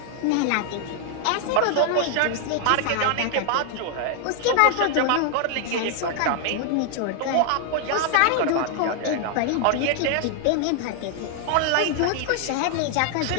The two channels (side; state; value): both; different; correlation 0.00